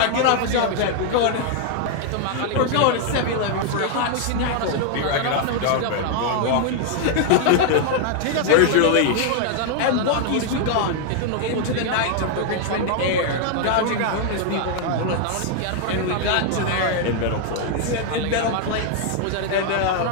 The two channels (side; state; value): both; different; correlation 0.00